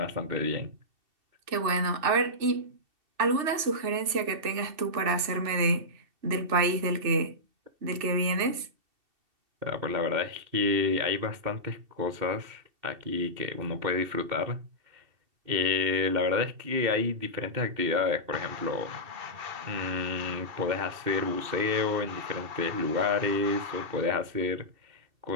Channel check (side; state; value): left; late; 2.7 ms